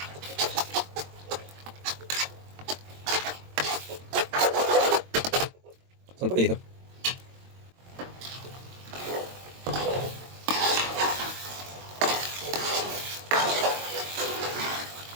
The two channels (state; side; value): late; left; 22 ms